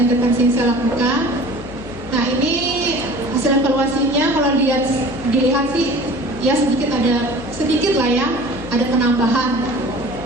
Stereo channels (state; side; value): noise; left; hum, 16 dB below the sound